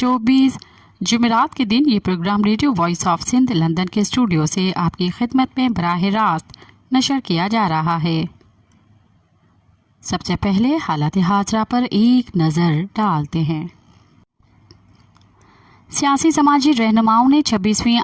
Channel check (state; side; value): identical; both; correlation 1.00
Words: जुमेरात के दिन ये program radio voice of Sindh London के स्टूडियो से आपकी खिदमत में बराह रास्त नशर किया जा रहा है। सबसे पहले हालात हाजरा पर एक नज़र डालते हैं। सियासी समाजी रहनुमाओं ने 26वीं